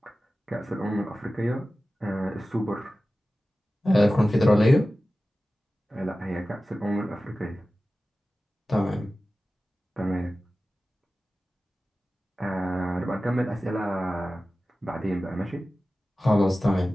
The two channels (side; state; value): both; normal; correlation 0.95